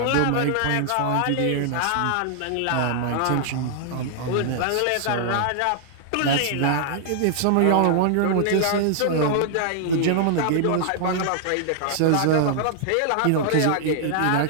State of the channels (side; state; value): both; different; correlation -0.01